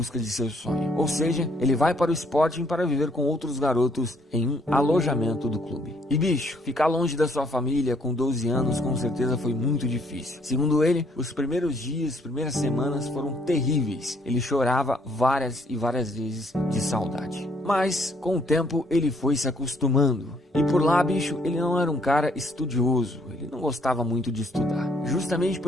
de seu sonho. Ou seja, ele vai para o Sporting para viver com outros garotos em um alojamento do clube. E bicho, ficar longe da sua família com 12 anos com certeza foi muito difícil. Segundo ele, os primeiros dias, primeiras semanas foram terríveis. Ele chorava várias e várias vezes de saudade. Mas, com o tempo, ele foi se acostumando. E por lá, bicho, ele não era um cara estudioso. Ele não gostava muito de estudar. Justamente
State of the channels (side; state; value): both; normal; correlation 0.67